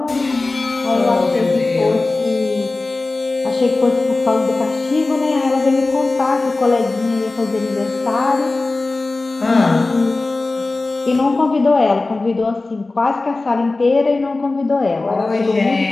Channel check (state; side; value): quieter; right; 3.3 dB